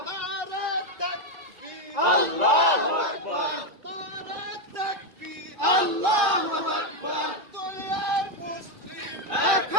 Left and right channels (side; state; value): left; late; 1.9 ms